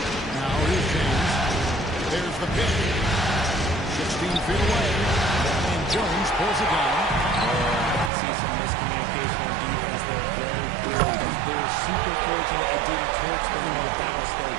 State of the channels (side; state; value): left; drops out; at 8.1 s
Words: Now here's James. There's the pick. 16 feet away. And Jones pulls it down. I can see some miscommunication on defense there very clearly. They're super fortunate it didn't torch them with that mistake.